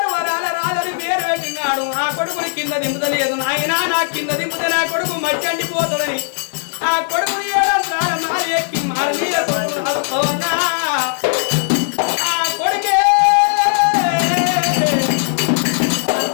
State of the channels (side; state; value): right; silent; 68 dB below the other